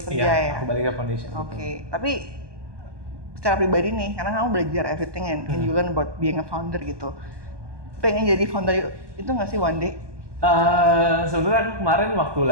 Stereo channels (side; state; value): left; late; 1.2 ms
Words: kerja ya? Aku balik ke foundation. Oke. Tapi secara pribadi nih, karena kamu belajar everything and you learn about being a founder gitu. Pengen jadi founder itu nggak sih one day? Sebenarnya kemarin waktu